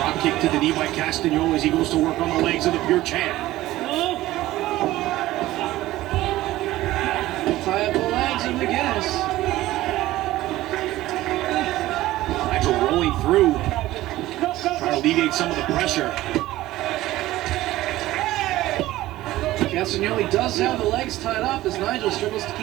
kick to the knee by Castagnoli as he goes to work on the legs of the Pure Champ. Tie up the legs of McGuinness. Nigel rolling through, trying to alleviate some of the pressure. Castagnoli does have the legs tied up as Nigel struggles to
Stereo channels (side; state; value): left; quieter; 16.2 dB